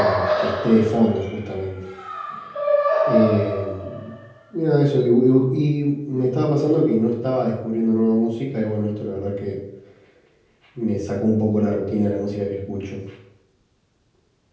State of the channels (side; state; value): both; identical; correlation 1.00